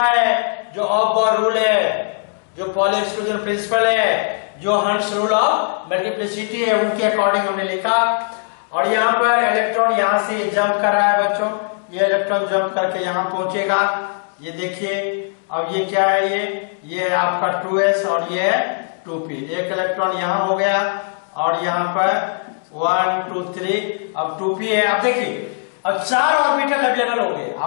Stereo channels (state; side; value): silent; right; digital silence